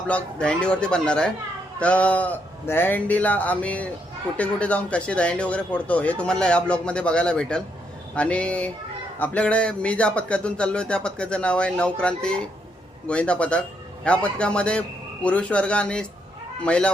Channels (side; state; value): both; normal; correlation 0.76